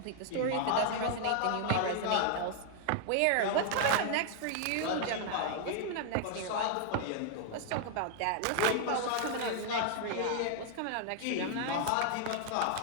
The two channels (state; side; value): different; both; correlation 0.00